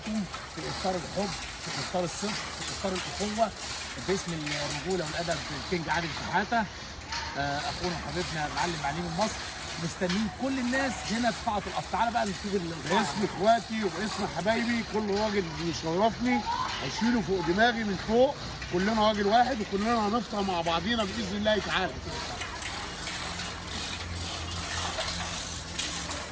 في افطار الحب، في افطار الصدق، في افطار الاخوه باسم الرجوله والادب الكينج عادل شحاته. اخونا وحبيبنا المعلم معلم مصر، مستنيين كل الناس هنا في قاعه القصر. تعالى بقى نشوف باسم اخواتي وباسم حبايبي كل راجل بيشرفني هشيله فوق دماغي من فوق. كلنا راجل واحد وكلنا هنفطر مع بعضينا باذن الله تعالى.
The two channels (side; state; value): both; identical; correlation 1.00